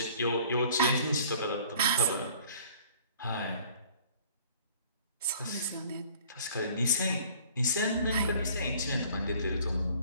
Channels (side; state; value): both; inverted; correlation -0.52